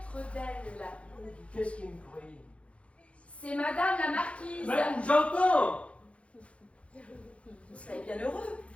d'elle. Qu'est-ce qu'il me prie? C'est Madame la Marquise. Ben, j'entends! Vous serez bien heureux.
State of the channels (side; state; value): right; late; 0.062 ms